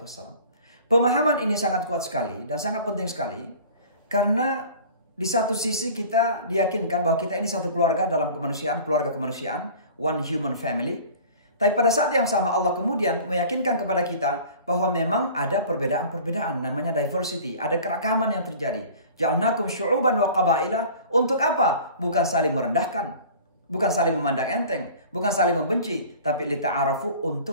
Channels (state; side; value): inverted; both; correlation -0.43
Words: wassalam. Pemahaman ini sangat kuat sekali dan sangat penting sekali, karena di satu sisi kita diyakinkan bahwa kita ini satu keluarga dalam kemanusiaan, keluarga kemanusiaan, one human family. Tapi pada saat yang sama Allah kemudian meyakinkan kepada kita bahwa memang ada perbedaan-perbedaan, namanya diversity, ada keragaman yang terjadi. Ja'alnakum syu'uban wa qabaila, untuk apa? Bukan saling merendahkan, bukan saling memandang enteng, bukan saling membenci, tapi lita'arafu,